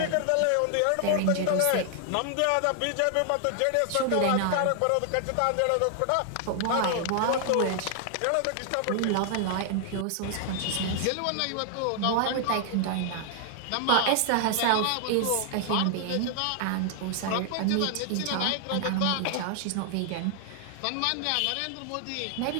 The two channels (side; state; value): both; different; correlation 0.00